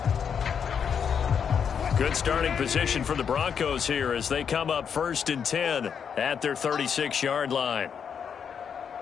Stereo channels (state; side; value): quieter; right; 7.2 dB